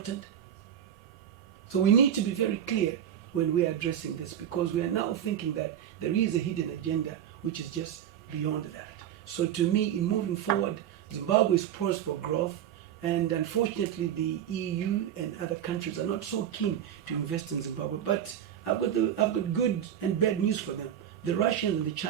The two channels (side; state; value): left; quieter; 10.0 dB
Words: So we need to be very clear when we are addressing this, because we are now thinking that there is a hidden agenda which is just beyond that. So to me, in moving forward, Zimbabwe is poised for growth, and unfortunately the EU and other countries are not so keen to invest in Zimbabwe. But I've got good and bad news for them. The Russians and the